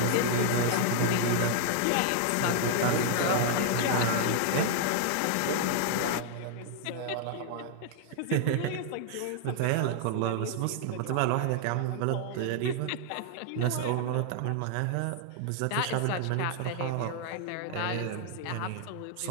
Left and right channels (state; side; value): different; both; correlation 0.00